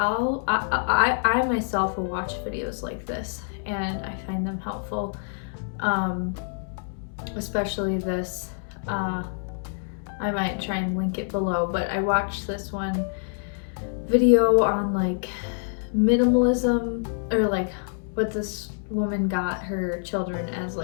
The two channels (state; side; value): silent; right; digital silence